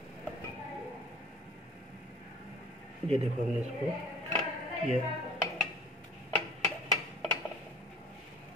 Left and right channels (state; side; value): normal; both; correlation 0.46